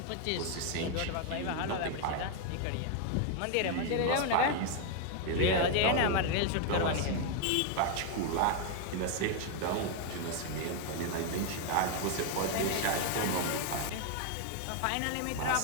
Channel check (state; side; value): different; both; correlation 0.00